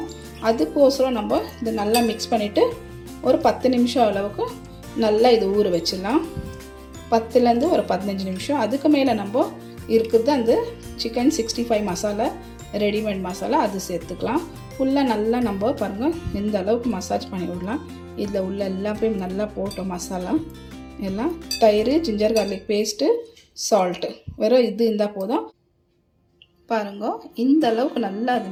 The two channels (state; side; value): identical; both; correlation 1.00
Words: அதுக்கோசரம் நம்ம இது நல்லா மிக்ஸ் பண்ணிவிட்டு ஒரு 10 நிமிஷம் அளவுக்கு நல்லா இது ஊற வச்சிடலாம். 10லேருந்து ஒரு 15 நிமிஷம். அதுக்கு மேலே நம்ம இருக்குது அந்த சிக்கன் 65 மசாலா ரெடிமேட் மசாலா, அது சேர்த்துக்கலாம். ஃபுல்லாக நல்லா நம்ம பாருங்கள் இந்த அளவுக்கு மசாஜ் பண்ணி விடலாம். இதில் உள்ள எல்லாமே நல்லா போட்டோம் மசாலா எல்லாம். தயிர், ஜிஞ்சர் கார்லிக் பேஸ்ட்டு, சால்ட்டு, வெறும் இது இருந்தால் போதும். பாருங்க இந்த அளவுக்கு நல்லா அது